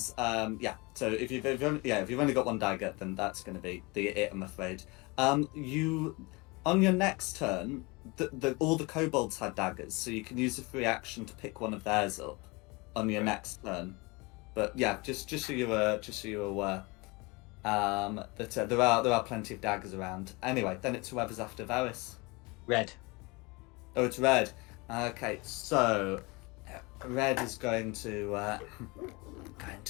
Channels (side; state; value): right; quieter; 26.2 dB